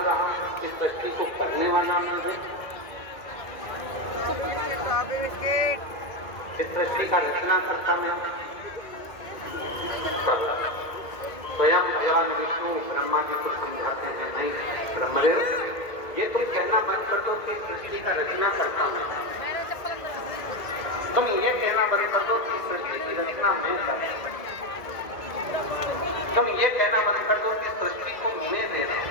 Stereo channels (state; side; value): late; right; 2.0 ms